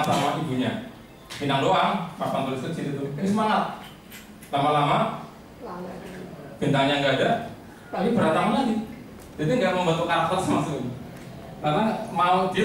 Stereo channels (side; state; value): both; identical; correlation 1.00